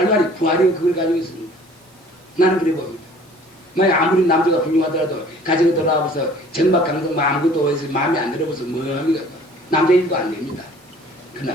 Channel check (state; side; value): normal; both; correlation 0.52